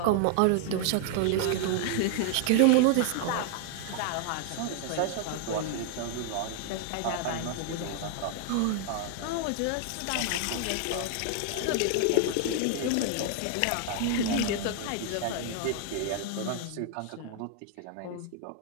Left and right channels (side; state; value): both; different; correlation 0.00